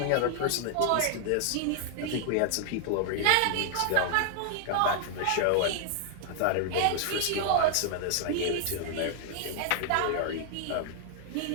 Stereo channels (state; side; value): different; both; correlation 0.00